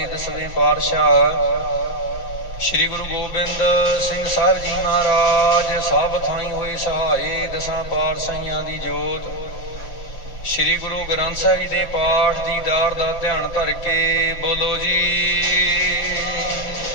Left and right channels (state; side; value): late; right; 5.8 ms